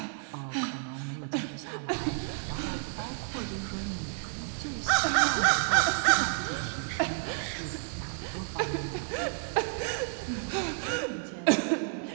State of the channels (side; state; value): left; silent; 57 dB below the other